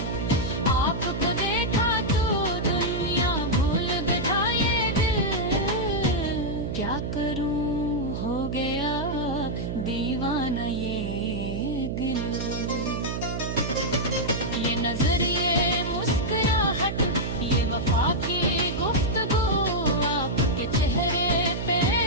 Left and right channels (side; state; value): right; noise; hum, 3 dB below the sound